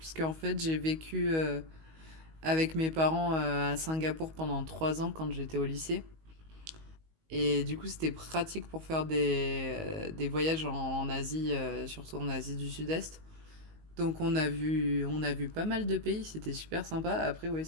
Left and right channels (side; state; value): left; late; 19 ms